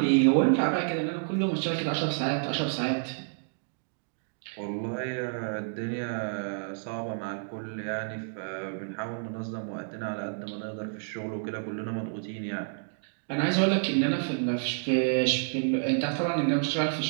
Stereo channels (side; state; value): left; silent; digital silence